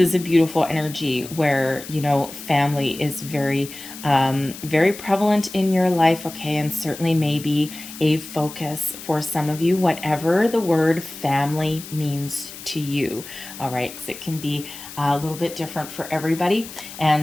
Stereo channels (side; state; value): left; noise; hiss, 14 dB below the sound